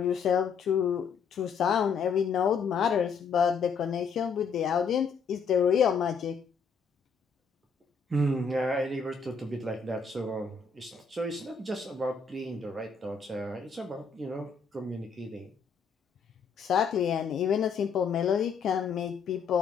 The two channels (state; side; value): quieter; right; 5.6 dB